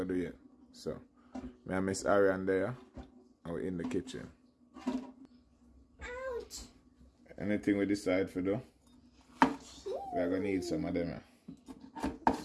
to do yet. So, me and Miss Ariane there and we're in the kitchen. Ouch! Anything we decide for do, we're going to need some of them.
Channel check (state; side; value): identical; both; correlation 1.00